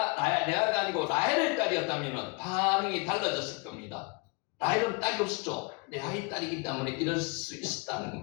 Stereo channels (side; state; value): right; quieter; 29.7 dB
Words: 아니고 라헬의 딸이었다면 반응이 달라졌을 겁니다. 라헬은 딸이 없었죠. 레아의 딸이기 때문에 이럴 수 있었다는